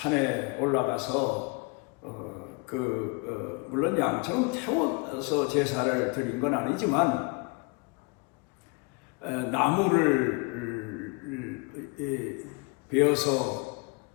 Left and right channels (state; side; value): quieter; right; 29.9 dB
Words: 올라가서 물론 양처럼 태워서 제사를 드린 건 아니지만 나무를 베어서